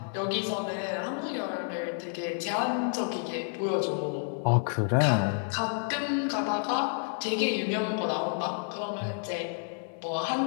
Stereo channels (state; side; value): silent; right; 58 dB below the other